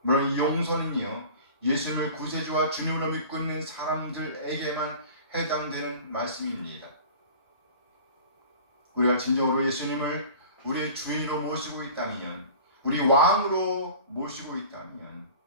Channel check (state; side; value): inverted; both; correlation -0.41